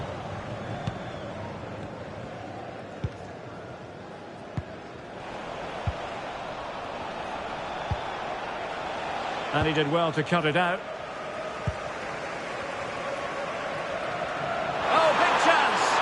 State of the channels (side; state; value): both; identical; correlation 1.00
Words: And he did well to cut it out. Oh, big chance!